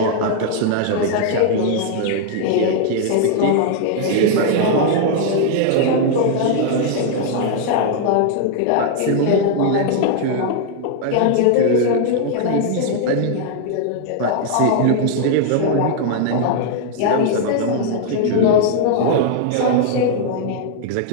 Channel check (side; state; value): both; different; correlation 0.00